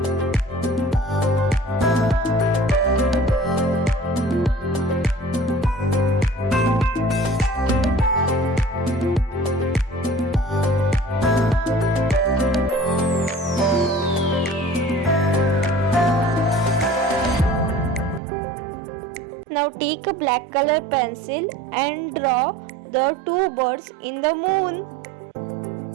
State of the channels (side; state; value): left; drops out; at 18.2 s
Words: Now take a black color pencil and draw the two birds in the moon.